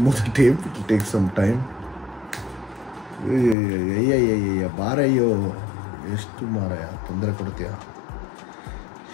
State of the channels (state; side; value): drops out; right; at 3.6 s